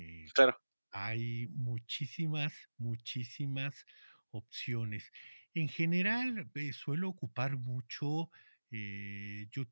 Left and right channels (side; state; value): both; inverted; correlation -1.00